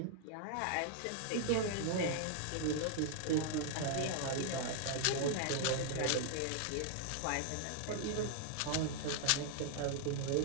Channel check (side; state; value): both; different; correlation 0.00